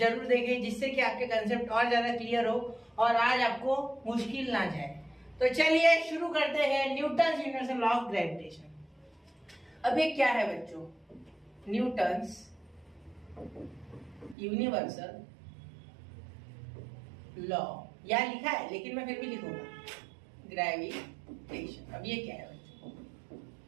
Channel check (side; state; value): left; drops out; at 14.4 s